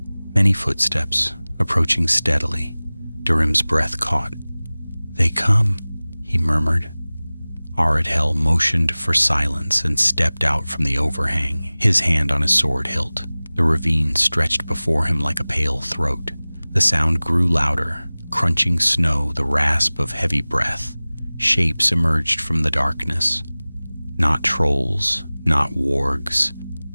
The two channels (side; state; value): both; inverted; correlation -0.99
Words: many footsteps, approaching steadily. Durham's breath caught. "They come," he murmured. Aradhel motioned for silence and stepped out from the overhang, his hand on his sword hilt. The ravine stretched before him like a pale throat. The sound grew louder, crunching snow, the rasp of heavy breath. Shapes emerged from the darkness. Not trolls, not wargs.